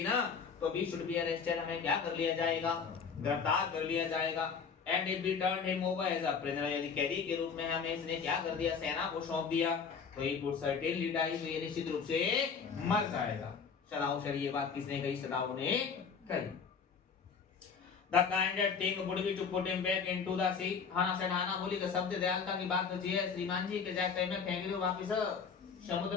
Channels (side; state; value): right; quieter; 6.0 dB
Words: ना, तो we should be arrested, हमें क्या कर लिया जाएगा, गिरफ्तार कर लिया जाएगा। And if we turned him over as a prisoner, यदि कैदी के रूप में हमें इसने क्या कर दिया, सेना को सौंप दिया, तो he would certainly die, तो ये निश्चित रूप से मर जाएगा। सदाव सर ये बात किसने कही, सदाव ने कही। The kindest thing would be to put him back into the sea. हाना से हाना बोली कि शब्द दयालुता की बात तो है श्रीमान जी, के जाके में फेंक दो, वापस